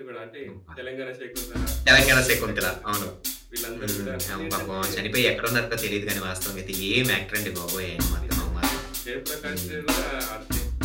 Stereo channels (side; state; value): both; identical; correlation 1.00